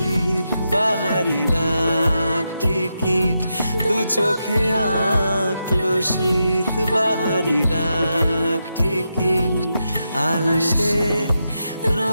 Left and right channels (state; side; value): inverted; both; correlation -0.86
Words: বাহারি ডাক টিকিট, দু চোখে আঁকলো শীত বাহারি ডাক টিকিট। আলসে